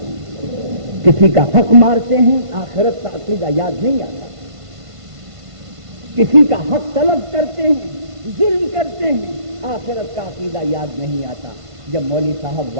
کسی کا حق مارتے ہیں آخرت کا عقیدہ یاد نہیں آتا، کسی کا حق طلب کرتے ہیں، ظلم کرتے ہیں، آخرت کا عقیدہ یاد نہیں آتا۔ جب مولوی صاحب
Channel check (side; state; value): left; late; 1.5 ms